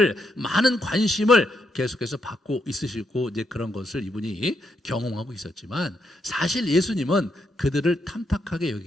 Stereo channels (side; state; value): both; normal; correlation 0.79